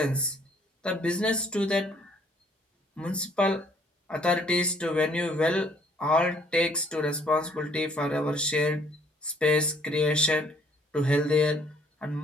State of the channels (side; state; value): both; normal; correlation 0.62